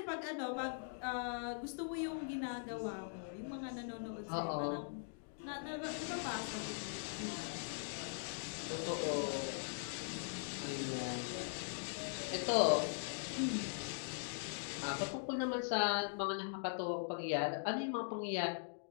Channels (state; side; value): silent; right; digital silence